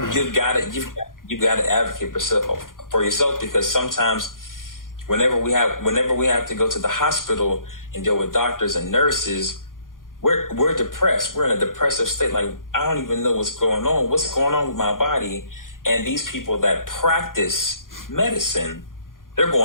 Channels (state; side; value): late; right; 0.90 ms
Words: got to advocate for yourself, because sometimes whenever we have to go to the hospital and deal with doctors and nurses, we're depressed. We're in a depressive state. Like, I don't even know what's going on. What's going on with my body? And these people that practice medicine, they're